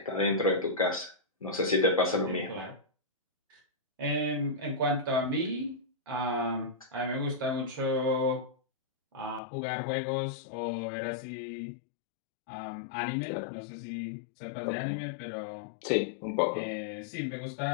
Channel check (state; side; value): drops out; right; at 9.4 s